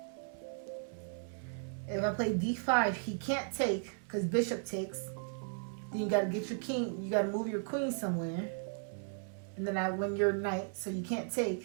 If I play d5, he can't take because bishop takes. Then you got to get your king. You got to move your queen somewhere. And then I win your knight, so you can't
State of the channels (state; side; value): silent; left; 54 dB below the other